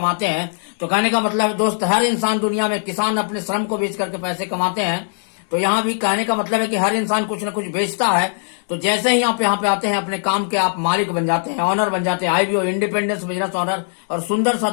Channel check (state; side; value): silent; right; digital silence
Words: हैं। तो कहने का मतलब है दोस्त, हर इंसान दुनिया में, किसान अपने श्रम को बेच करके पैसे कमाते हैं। तो यहाँ भी कहने का मतलब है कि हर इंसान कुछ न कुछ बेचता है। तो जैसे ही आप यहाँ पे आते हैं, अपने काम के आप मालिक बन जाते हैं, ऑनर बन जाते हैं, आईबीओ, इंडिपेंडेंस बिजनेस ऑनर, और सुंदर सा